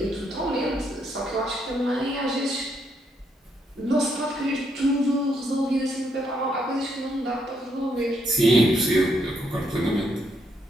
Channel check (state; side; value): normal; both; correlation 0.75